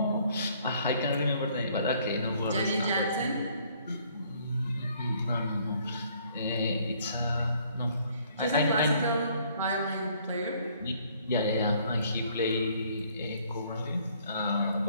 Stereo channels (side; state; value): both; inverted; correlation -0.62